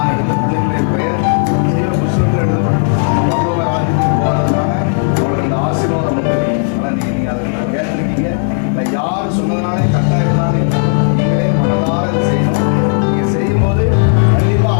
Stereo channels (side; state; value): right; silent; 56 dB below the other